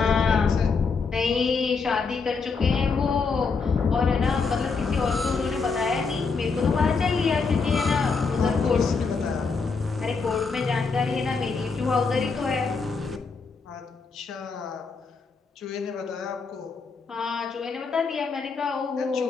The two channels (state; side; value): quieter; right; 4.8 dB